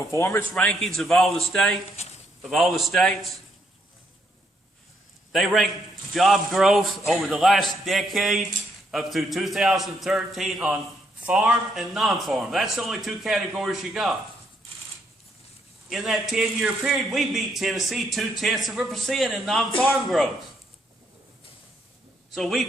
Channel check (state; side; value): normal; both; correlation 0.74